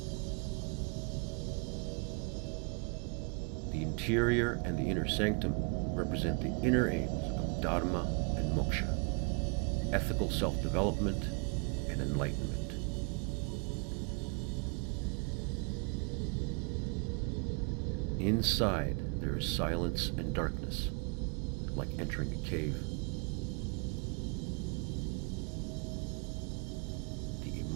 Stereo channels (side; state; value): left; quieter; 35.9 dB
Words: The interior and the inner sanctum represent the inner aims of dharma and moksha, ethical self-development and enlightenment. Inside there is silence and darkness, like entering a cave. The